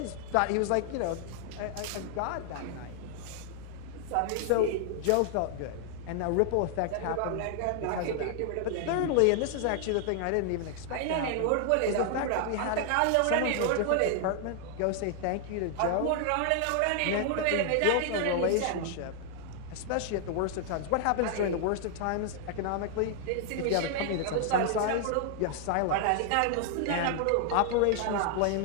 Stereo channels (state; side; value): different; both; correlation 0.00